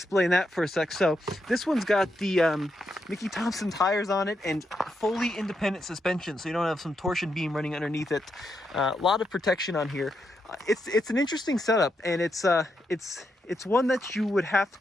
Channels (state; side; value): normal; both; correlation 0.82